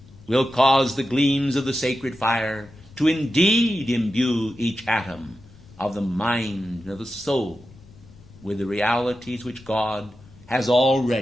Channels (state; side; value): noise; left; rumble, 23 dB below the sound